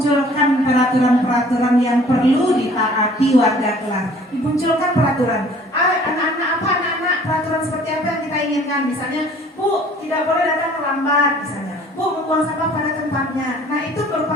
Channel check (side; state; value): both; normal; correlation 0.53